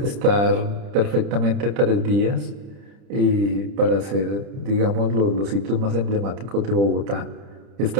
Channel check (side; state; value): left; late; 30 ms